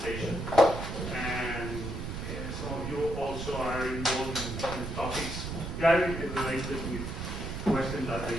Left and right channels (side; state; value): right; noise; rumble, 5 dB below the sound